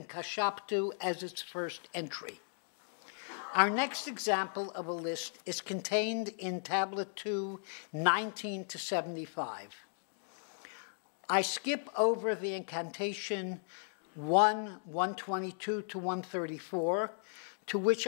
Kashaptu as its first entry. Our next example of a list is contained in tablet 2, 19 to 75. I skip over the incantation 1, 122 to 134, to which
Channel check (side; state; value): right; silent; digital silence